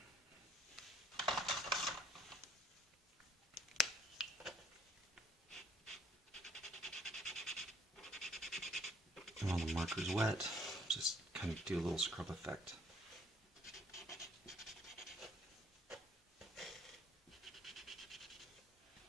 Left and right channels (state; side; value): normal; both; correlation 0.63